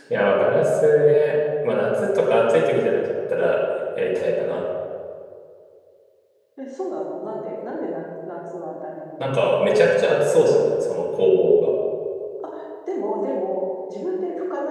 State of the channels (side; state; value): both; identical; correlation 1.00